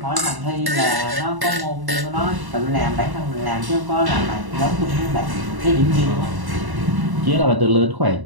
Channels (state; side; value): late; left; 1.0 ms